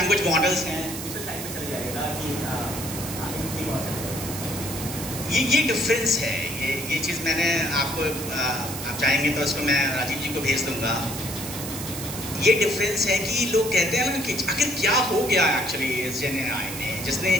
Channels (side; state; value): right; noise; hiss, 8 dB below the sound